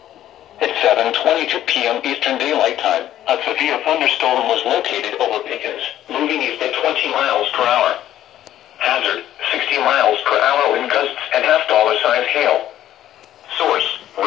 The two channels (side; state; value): right; quieter; 12.3 dB